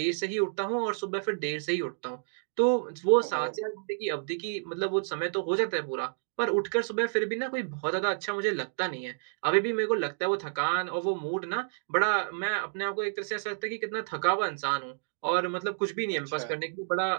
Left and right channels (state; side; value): silent; left; digital silence